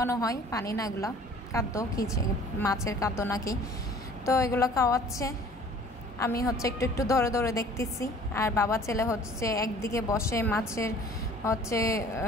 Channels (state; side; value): normal; both; correlation 0.51